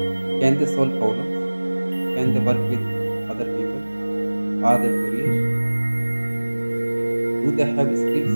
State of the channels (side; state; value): both; inverted; correlation -1.00